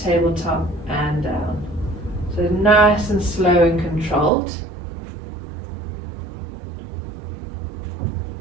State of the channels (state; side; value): drops out; left; at 4.3 s